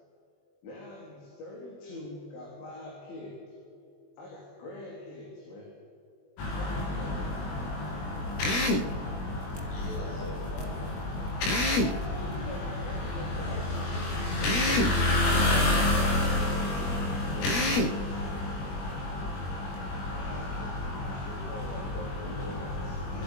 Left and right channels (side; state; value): right; late; 21 ms